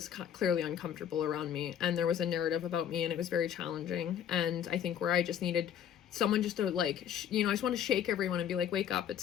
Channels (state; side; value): quieter; right; 9.3 dB